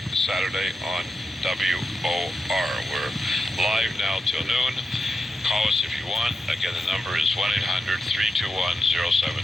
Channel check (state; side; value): normal; both; correlation 0.88